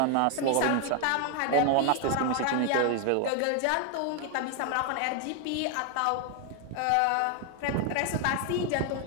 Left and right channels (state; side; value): different; both; correlation 0.01